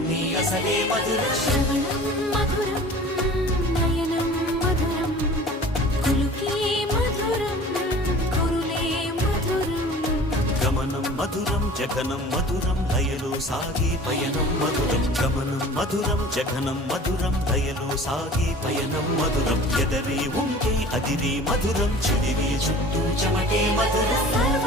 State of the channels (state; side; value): normal; both; correlation 0.43